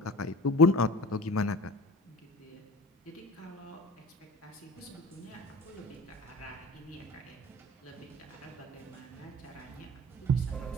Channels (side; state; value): both; normal; correlation 0.39